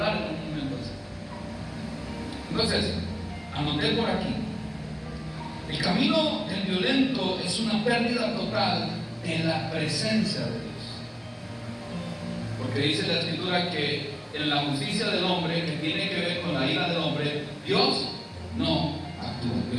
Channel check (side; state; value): both; identical; correlation 1.00